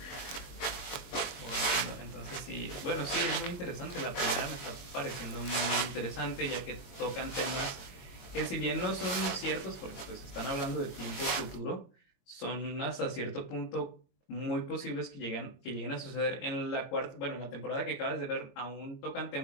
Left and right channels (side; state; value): right; late; 22 ms